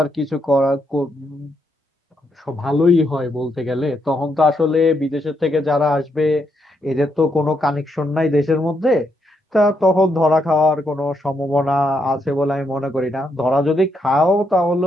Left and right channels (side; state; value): both; normal; correlation 0.78